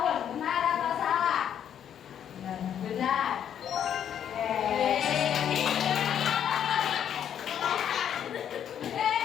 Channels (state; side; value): quieter; right; 9.3 dB